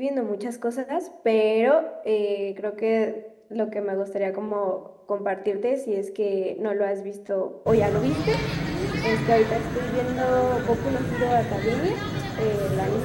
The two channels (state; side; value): identical; both; correlation 1.00